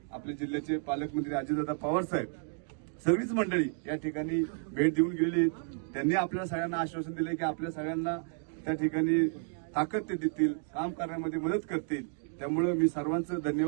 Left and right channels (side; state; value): left; silent; 57 dB below the other